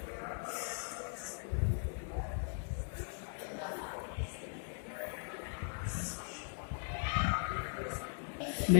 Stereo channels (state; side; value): silent; right; 52 dB below the other